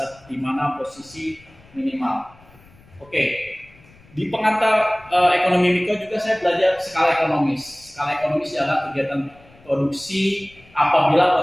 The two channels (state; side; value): noise; left; rumble, 26 dB below the sound